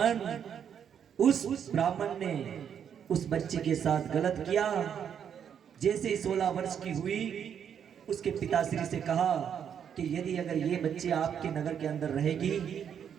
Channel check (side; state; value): left; quieter; 8.3 dB